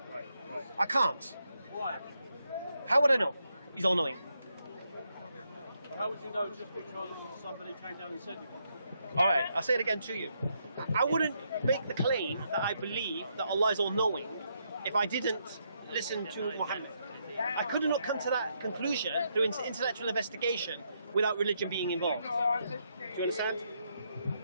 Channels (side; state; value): both; inverted; correlation -0.78